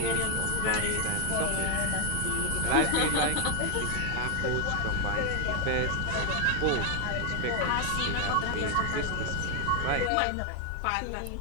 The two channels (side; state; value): both; different; correlation 0.01